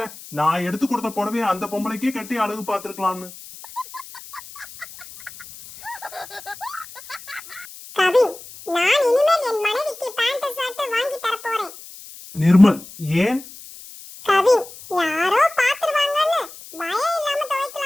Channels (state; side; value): noise; left; hiss, 17 dB below the sound